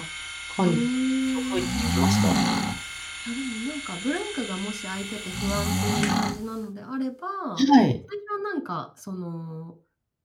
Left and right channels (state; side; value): identical; both; correlation 1.00